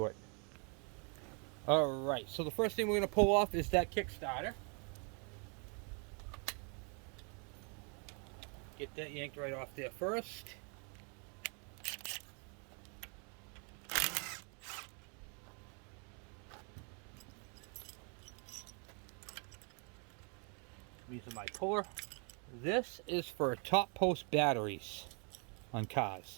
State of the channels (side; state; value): left; quieter; 37.5 dB